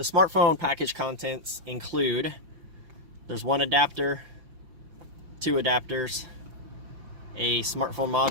smartphone package contents include, there's one adapter, two adapters, a smartphone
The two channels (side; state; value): left; late; 6.0 ms